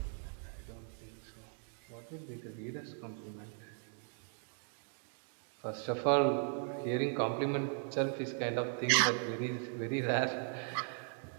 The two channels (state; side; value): silent; left; 52 dB below the other